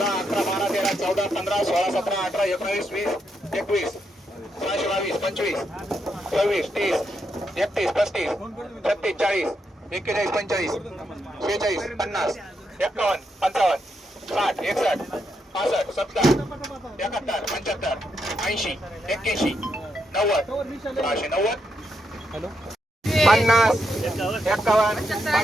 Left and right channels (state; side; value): normal; both; correlation 0.81